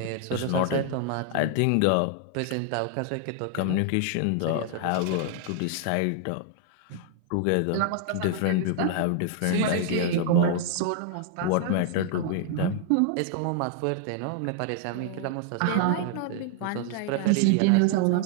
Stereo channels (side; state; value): both; different; correlation 0.00